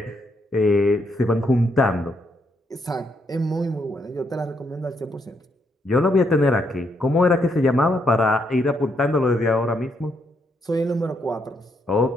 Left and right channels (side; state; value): both; normal; correlation 0.76